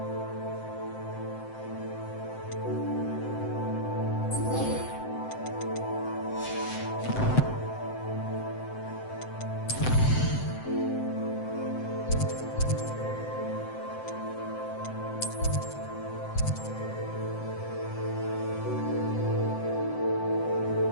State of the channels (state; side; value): late; right; 7.8 ms